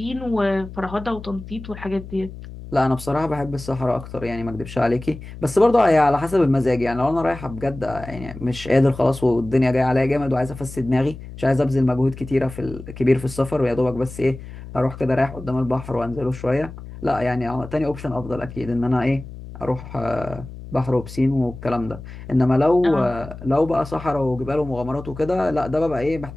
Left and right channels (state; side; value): noise; left; hum, 13 dB below the sound